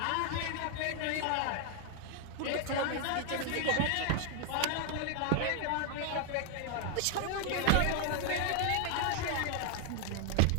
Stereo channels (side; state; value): both; different; correlation 0.00